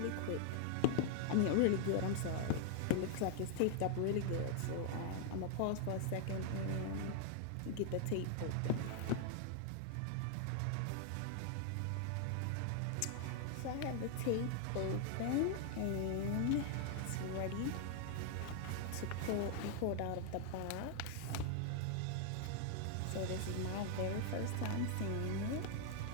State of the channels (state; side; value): different; both; correlation 0.00